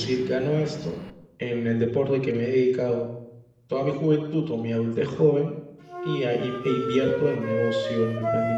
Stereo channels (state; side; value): identical; both; correlation 1.00